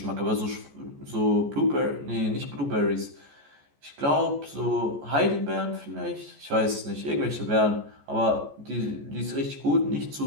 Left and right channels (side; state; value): left; late; 14 ms